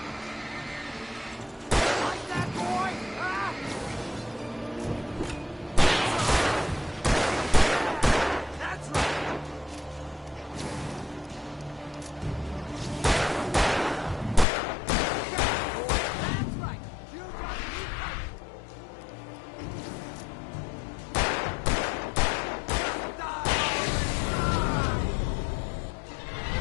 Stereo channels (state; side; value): drops out; right; at 14.5 s